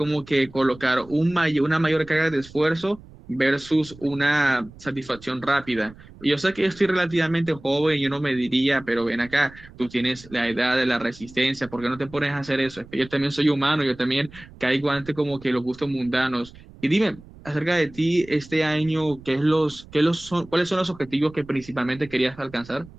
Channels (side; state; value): right; noise; rumble, 21 dB below the sound